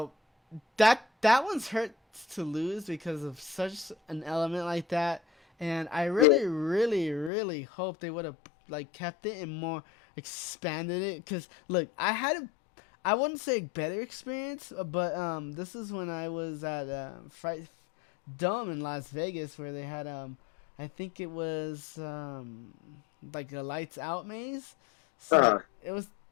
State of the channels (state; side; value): drops out; right; at 7.3 s